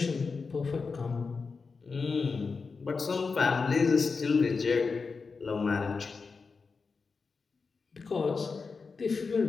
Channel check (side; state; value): right; quieter; 4.7 dB